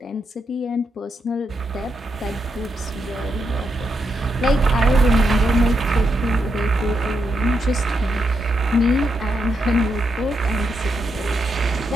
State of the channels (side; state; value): both; normal; correlation 0.82